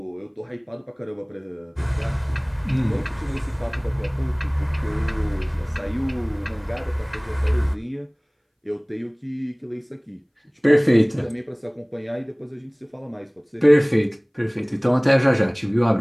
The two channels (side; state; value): both; identical; correlation 1.00